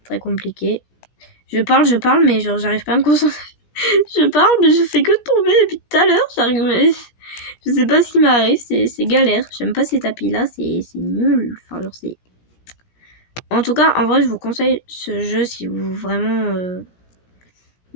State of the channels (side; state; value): right; late; 17 ms